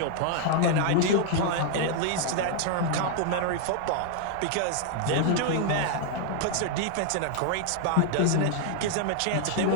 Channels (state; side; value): different; both; correlation 0.00